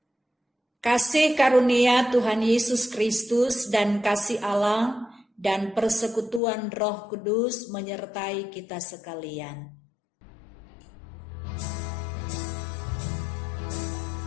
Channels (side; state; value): right; drops out; at 6.4 s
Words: Kasih karunia Tuhan Yesus Kristus dan kasih Allah dan persekutuan Roh Kudus menyertai kita sekalian.